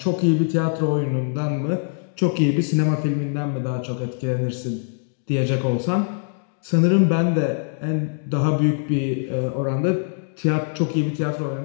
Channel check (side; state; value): right; silent; digital silence